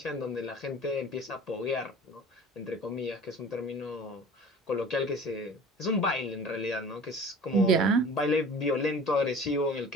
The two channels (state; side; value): normal; both; correlation 0.43